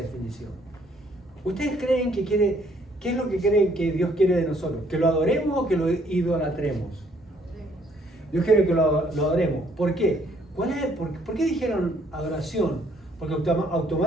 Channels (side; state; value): both; normal; correlation 0.65